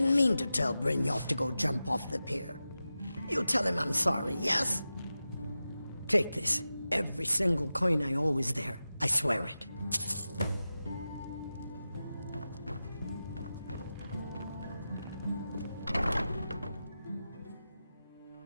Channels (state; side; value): inverted; both; correlation -0.93